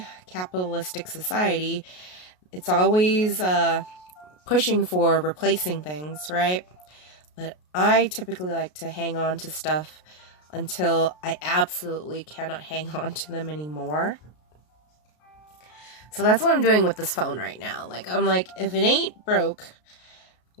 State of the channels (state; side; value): late; right; 33 ms